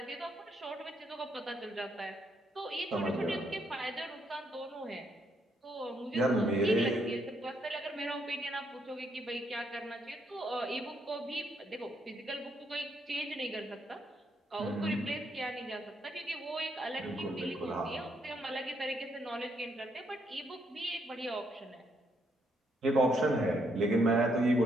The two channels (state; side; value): normal; both; correlation 0.74